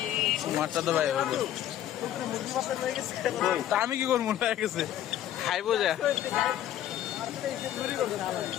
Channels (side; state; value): right; quieter; 11.9 dB